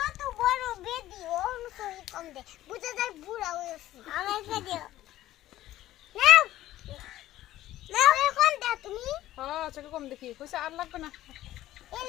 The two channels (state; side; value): quieter; right; 14.4 dB